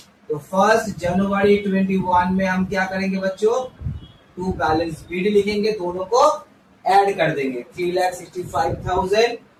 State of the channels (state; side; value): identical; both; correlation 1.00